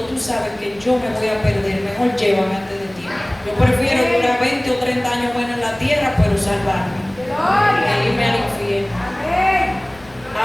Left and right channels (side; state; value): left; noise; rumble, 25 dB below the sound